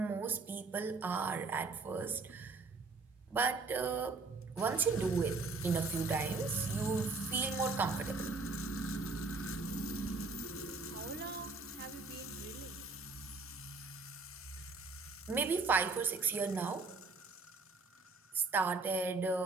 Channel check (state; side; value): quieter; left; 3.9 dB